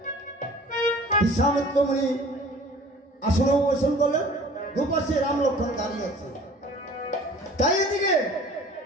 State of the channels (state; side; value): normal; both; correlation 0.48